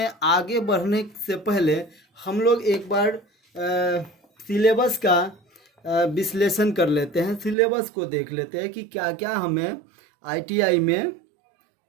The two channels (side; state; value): left; drops out; at 7.6 s